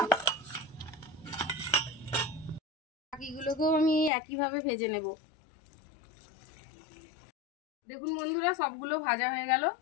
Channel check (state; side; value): drops out; right; at 4.1 s